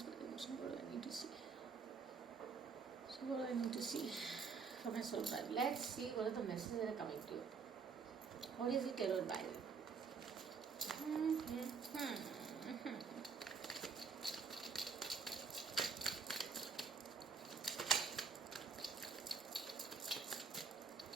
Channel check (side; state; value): left; quieter; 5.4 dB